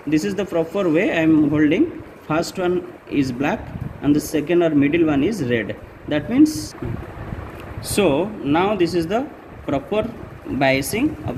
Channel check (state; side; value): identical; both; correlation 1.00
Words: this is the proper way. I am holding first one is black and the second or middle one is red. That means, so now this is the proper biasing